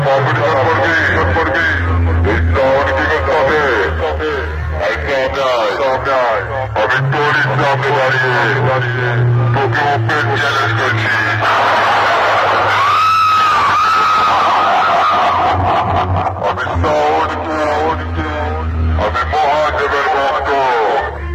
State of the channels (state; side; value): identical; both; correlation 1.00